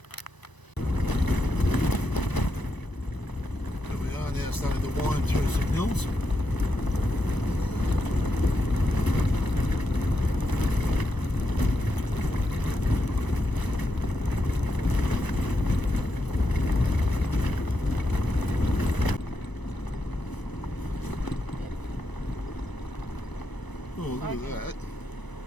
And we are now starting to wind through some hills. Oh, look at that.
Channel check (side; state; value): right; late; 1.0 ms